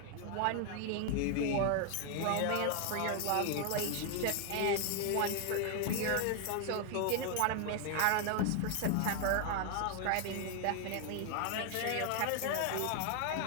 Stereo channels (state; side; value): different; both; correlation 0.00